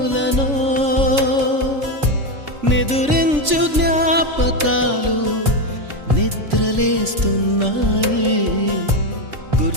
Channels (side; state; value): left; late; 3.5 ms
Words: నిదురించు జ్ఞాపకాలు నిద్రలేస్తున్నాయి